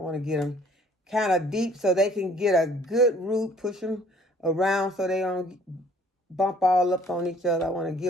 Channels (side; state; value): both; normal; correlation 0.57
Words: to get them kind of deep so they can get a good root, push them around so they don't bump all up on each other. I want to